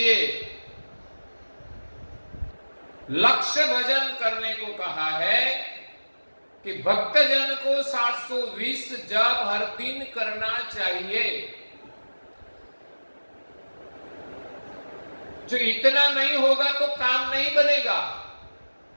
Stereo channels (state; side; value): inverted; both; correlation -1.00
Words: लक्ष्य भजन करने को कहा है कि भक्तजन को 720 जप हर दिन करना चाहिए। जो इतना नहीं होगा तो काम नहीं बनेगा,